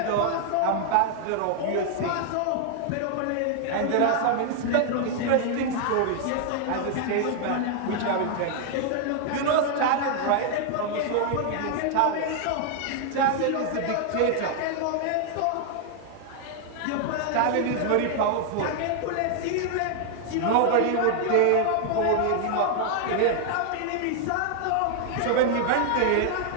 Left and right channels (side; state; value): both; different; correlation 0.00